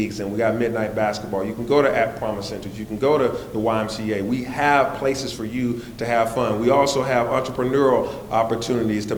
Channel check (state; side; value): identical; both; correlation 1.00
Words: and we got midnight basketball. You can go to App Promise Centers. You can go to the YMCA. We have places for you to have fun. We also have entrepreneurial opportunities to